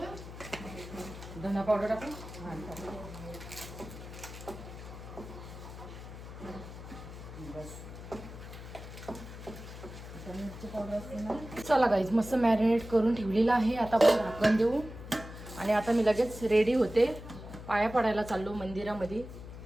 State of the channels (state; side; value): noise; left; hum, 12 dB below the sound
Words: धना पावडर टाकू. हां टाक. बस. मिरची पावडर असते ना. चला गाईज मस्त मॅरिनेट करून ठेवलेलं आहे. आता आपण झाकण देऊ. आणि आता मी लगेच रेडी होते. पाया पडायला चाललो मंदिरामध्ये.